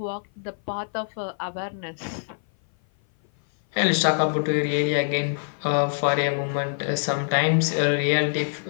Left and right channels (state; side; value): silent; right; 57 dB below the other